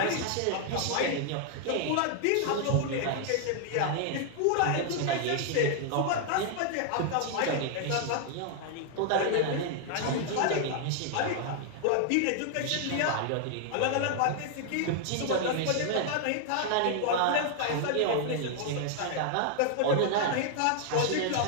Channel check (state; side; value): different; both; correlation 0.00